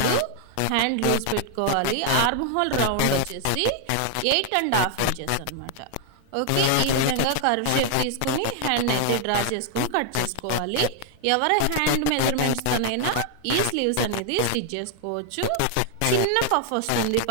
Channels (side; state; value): both; different; correlation 0.00